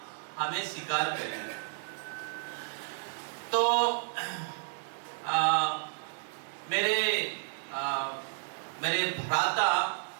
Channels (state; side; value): silent; left; digital silence